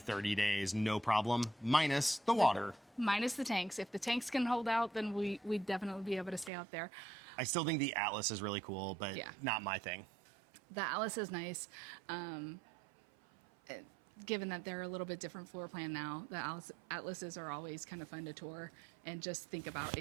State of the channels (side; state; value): left; drops out; at 6.5 s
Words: 30 days, no problem, minus the water. Minus the tanks. If the tanks can hold out, then we'd definitely be able to stay out there. I still think the Atlas is really cool, but not my thing. The Atlas is nice. Given that they're a little bit different floor plan now, the Atlases are always kind of fun to tour and just think about